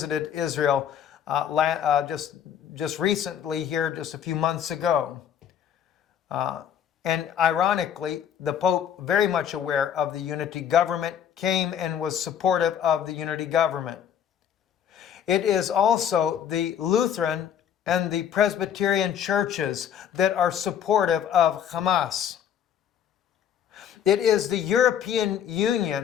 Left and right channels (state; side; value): quieter; right; 9.1 dB